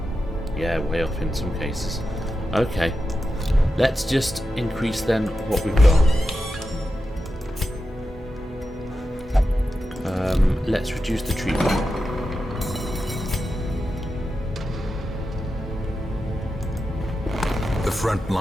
Yeah, way off in some cases. Okay. Let's just increase then what we've got. let's reduce the treatment. The front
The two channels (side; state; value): both; normal; correlation 0.90